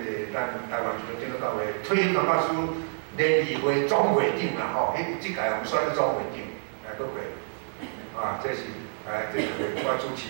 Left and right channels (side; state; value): left; silent; digital silence